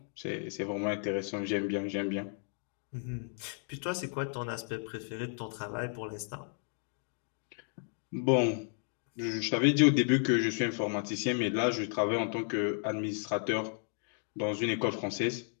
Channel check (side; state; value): right; silent; 56 dB below the other